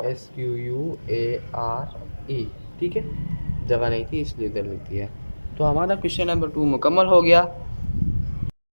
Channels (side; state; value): both; inverted; correlation -1.00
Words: SQUARE, ठीक है, जगह नहीं थी इसलिए इधर लिख दिया। तो हमारा क्वेश्चन नंबर 2 मुकम्मल हो गया।